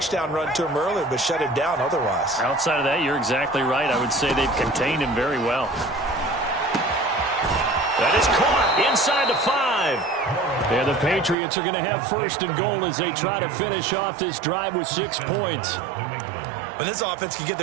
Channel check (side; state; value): left; drops out; at 11.4 s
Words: run to him earlier but shut him down otherwise. Outside of that, you're exactly right. I would say they've contained him very well. That is caught inside the 5. And the Patriots are going to have 1st and goal as they try to finish off this drive with 6 points. When this offense can get